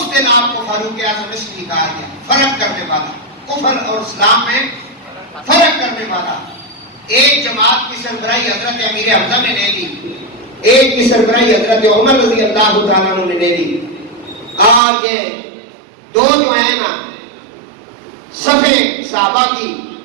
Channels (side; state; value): left; drops out; at 14.8 s